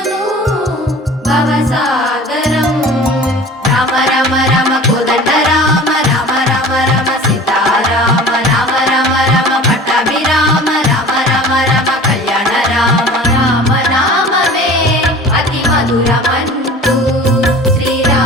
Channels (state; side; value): normal; both; correlation 0.41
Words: భవసాగరం రామ రామ రామ కోదండ రామ రామ రామ రామ సీతారామ రామ రామ రామ పట్టాభిరామ రామ రామ రామ కళ్యాణ రామ రామ నామమే అతి మధురమంటూ